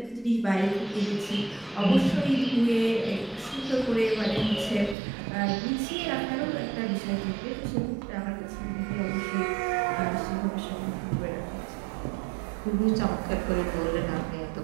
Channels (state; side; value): drops out; left; at 5.0 s